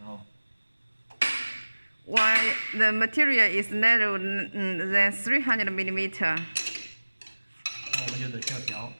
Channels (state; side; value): inverted; both; correlation -1.00